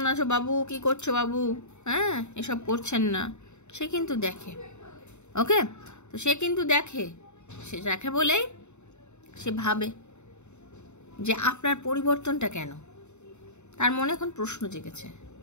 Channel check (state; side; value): late; right; 0.82 ms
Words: আছো বাবু, কি করছো বাবু, হ্যাঁ, এসব করছেন না। সে কিন্তু দেখে, ওকে। তো সে কিন্তু দেখে, সে দেখে বলেই সে ভাবে যে আপনার পরিবর্তনটা কেন। তার মনে এখন প্রশ্ন জেগেছে,